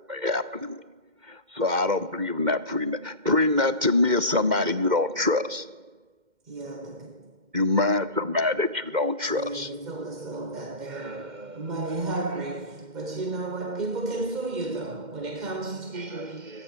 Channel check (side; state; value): left; late; 2.1 ms